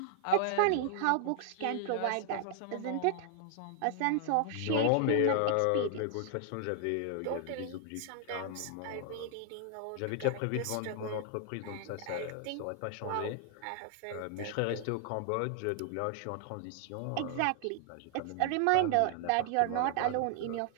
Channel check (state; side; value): different; both; correlation 0.00